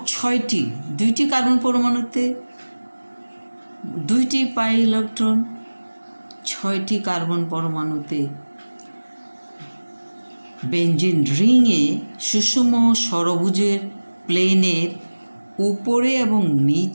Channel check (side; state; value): both; inverted; correlation -1.00